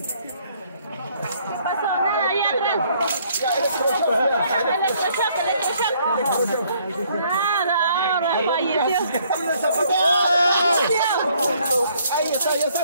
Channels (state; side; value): inverted; both; correlation -0.65